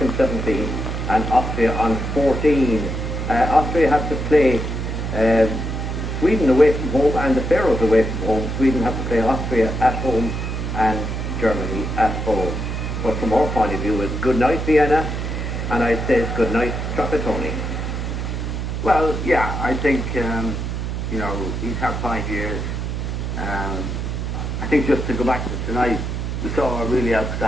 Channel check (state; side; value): noise; right; hum, 3 dB below the sound